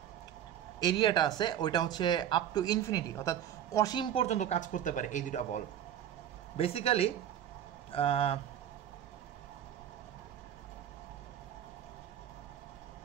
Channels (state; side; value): quieter; left; 10.3 dB